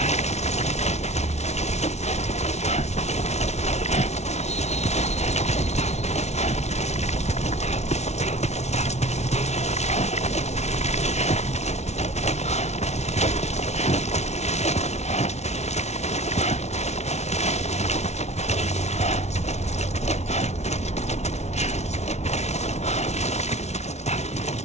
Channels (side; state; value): right; late; 0.32 ms